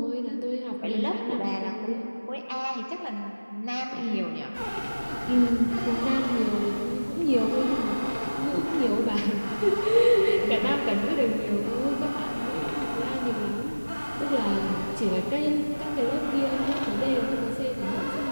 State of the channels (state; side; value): inverted; both; correlation -1.00